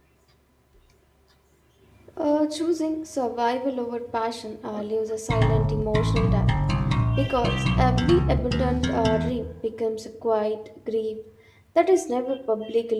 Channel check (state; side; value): identical; both; correlation 1.00